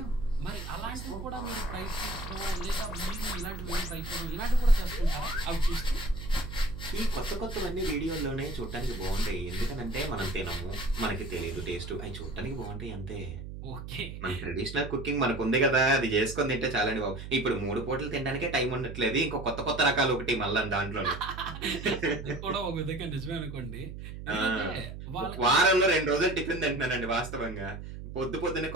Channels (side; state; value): right; noise; hum, 10 dB below the sound